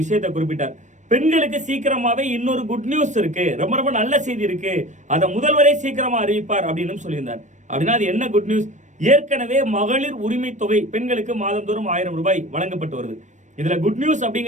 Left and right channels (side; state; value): left; late; 0.35 ms